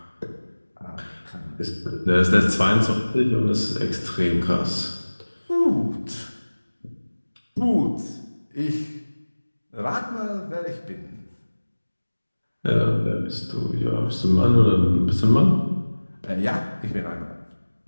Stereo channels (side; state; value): both; inverted; correlation -1.00